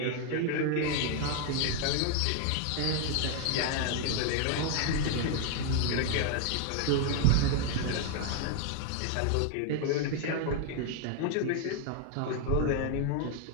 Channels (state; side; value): different; both; correlation 0.00